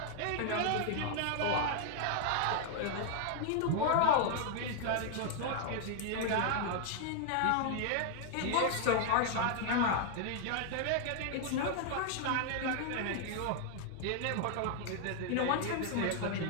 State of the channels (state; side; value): different; both; correlation 0.00